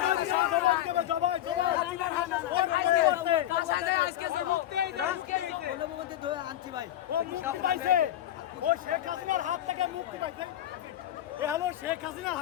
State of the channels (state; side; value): quieter; right; 12.5 dB